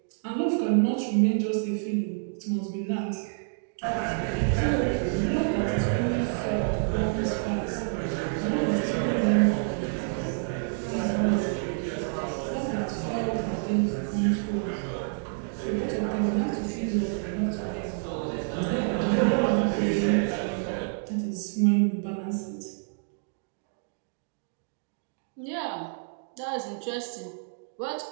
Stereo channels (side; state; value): left; silent; digital silence